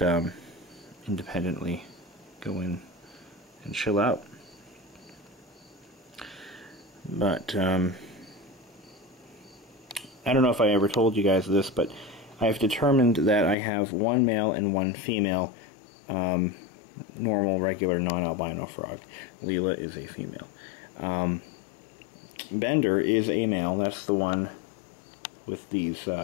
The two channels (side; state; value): right; drops out; at 13.6 s